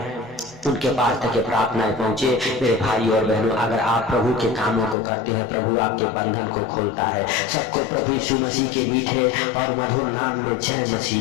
उनके पास तक ये प्रार्थनाएं पहुंचे। मेरे भाई और बहनों अगर आप प्रभु के कामों को करते हैं प्रभु आपके बंधन को खोलता है। सबको प्रभु यीशु मसीह के मीठे और मधुर नाम में जय मसीह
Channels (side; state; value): right; drops out; at 5.0 s